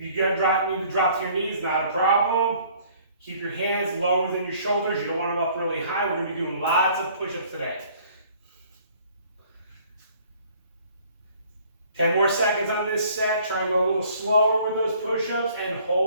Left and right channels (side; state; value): both; inverted; correlation -0.56